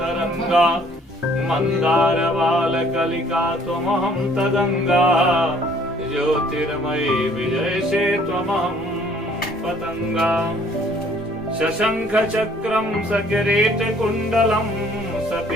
मन्दारबालकलिका त्वमहं तदङ्गा ज्योतिर्मयी विजयसे त्वमहं पतङ्गा शशङ्खचक्रं सकिरीटकुण्डलं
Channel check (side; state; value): both; normal; correlation 0.59